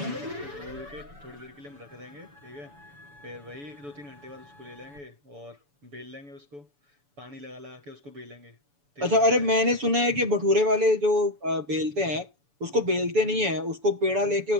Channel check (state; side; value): late; left; 7.0 ms